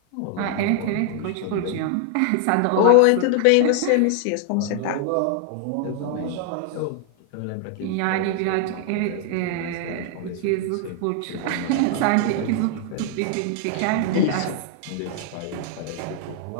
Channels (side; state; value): both; different; correlation 0.00